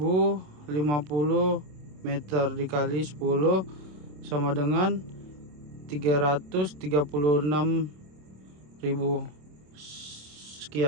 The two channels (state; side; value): late; left; 27 ms